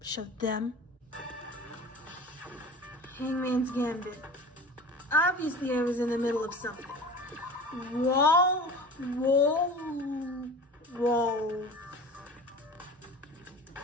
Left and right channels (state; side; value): normal; both; correlation 0.37